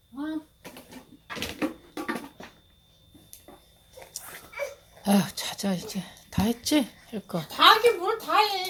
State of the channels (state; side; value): identical; both; correlation 1.00